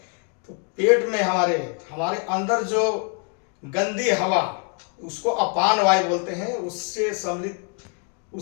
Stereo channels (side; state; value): right; quieter; 39.7 dB